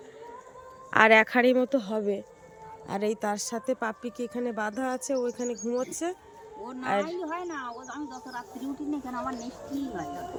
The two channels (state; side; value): identical; both; correlation 1.00